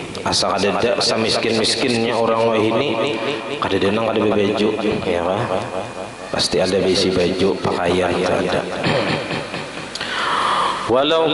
Asal ada miskin-miskinnya orang wah ini kada denang kada baju ya kan. Pasti ada besi baju pakaian ada. Walau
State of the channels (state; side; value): identical; both; correlation 1.00